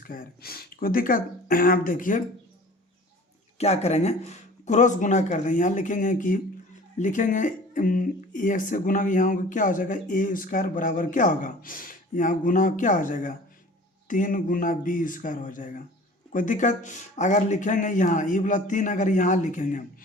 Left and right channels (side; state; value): both; normal; correlation 0.45